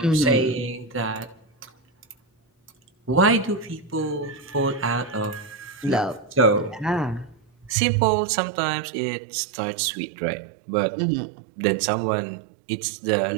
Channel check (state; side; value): drops out; left; at 7.8 s